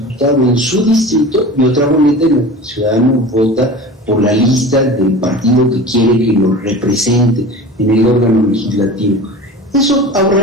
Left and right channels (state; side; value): normal; both; correlation 0.35